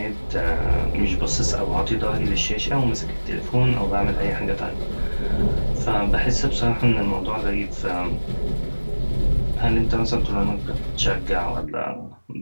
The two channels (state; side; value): inverted; both; correlation -1.00